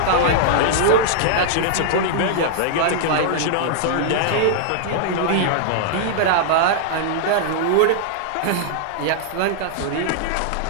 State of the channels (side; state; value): both; different; correlation -0.01